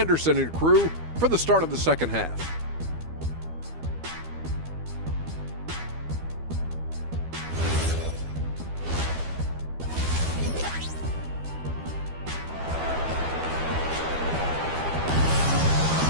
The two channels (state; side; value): late; left; 12 ms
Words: and crew for the start of the second half.